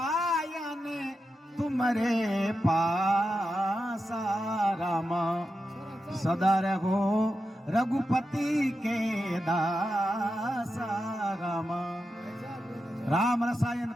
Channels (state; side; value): normal; both; correlation 0.89